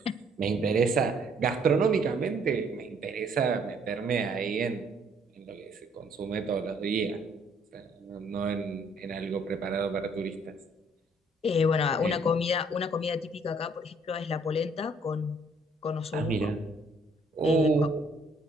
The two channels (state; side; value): normal; both; correlation 0.63